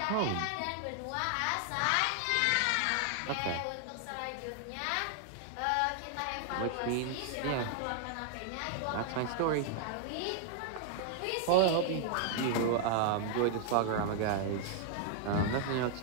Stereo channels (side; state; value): both; different; correlation 0.00